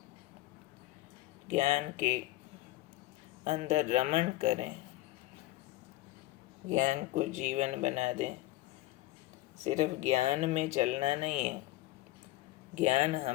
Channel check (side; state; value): right; quieter; 17.5 dB